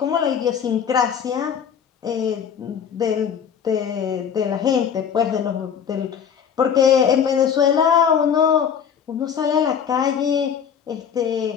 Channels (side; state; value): right; quieter; 7.7 dB